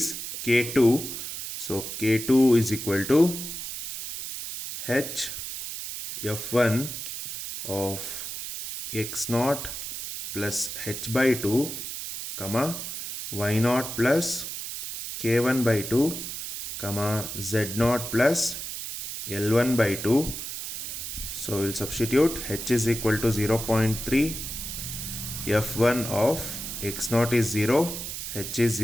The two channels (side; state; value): right; noise; hiss, 7 dB below the sound